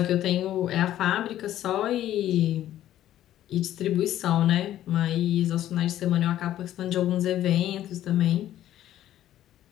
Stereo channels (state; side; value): quieter; right; 12.6 dB